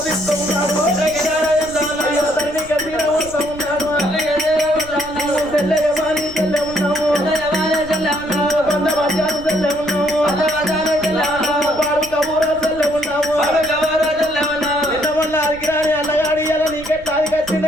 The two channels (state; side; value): noise; right; rumble, 18 dB below the sound